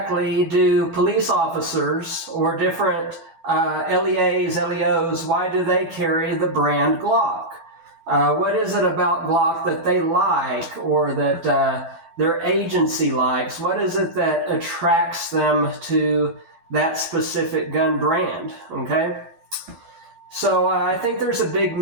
do police officers or different LEAs, LEOs, why do they carry the brand Glock? What is it about Glock that they like or that their agency likes? What is it that attracts them to that specific gun brand? Okay, so I think there's a big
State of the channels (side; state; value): left; late; 12 ms